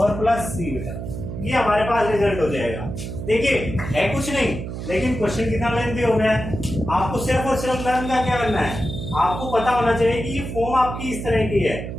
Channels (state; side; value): noise; right; hum, 7 dB below the sound